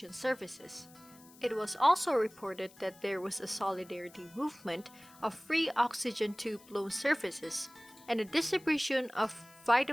services. It was also reported that there was a solidarity movement of free oxygen tube loan services and a distribution of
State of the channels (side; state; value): left; noise; hiss, 24 dB below the sound